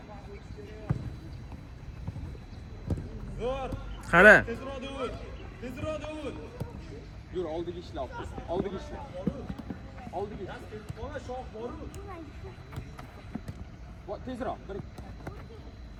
Qara. Tezroq Davud. Yur, oldiga ishla. Oldiga. Mana shoh bor-ku. Tezroq.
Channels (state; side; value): identical; both; correlation 1.00